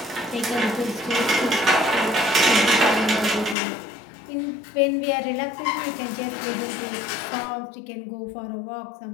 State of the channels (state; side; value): drops out; right; at 3.6 s